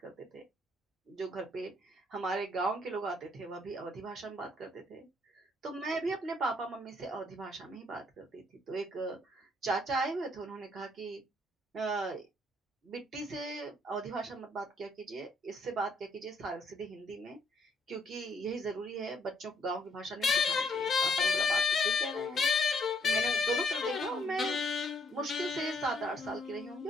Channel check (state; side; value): normal; both; correlation 0.69